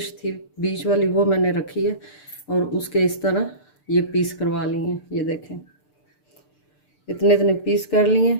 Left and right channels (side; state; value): right; late; 6.7 ms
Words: थी बीच वाली वो मैंने रखी है और उसके इस तरह ये पीस करवा लिए हैं। ये देखें, इतने इतने पीस कर लिए